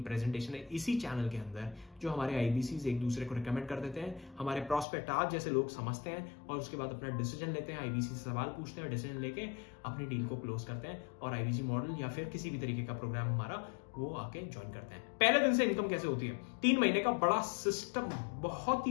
है इसी चैनल के अंदर, जो हमारे आईबीसीज एक दूसरे को रिकमेंड कर देते हैं। हमारे प्रोस्पेक्ट आज जैसे लोग समझते हैं और उसके बाद अपना डिसीजन लेते हैं, आईबीसी से सवाल पूछते हैं, डिसीजन लेके अपनी डील को क्लोज करते हैं और आईबीसी मॉडल या फिर किसी भी तरीके का प्रोग्राम हमारा वो आके ज्वाइन करते हैं। पहले दिन से इनकम कैसे होती है, 3 महीने का बड़ा सिस्टम, बहुत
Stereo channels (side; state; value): right; drops out; at 4.9 s